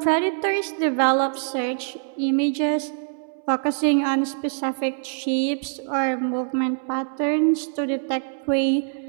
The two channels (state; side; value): silent; left; 62 dB below the other